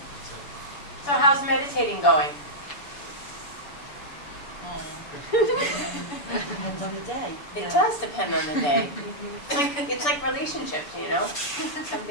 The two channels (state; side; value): late; right; 6.9 ms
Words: So how's meditating going? Depends on the day. It does depend on the day. It's like relationships, you know? Some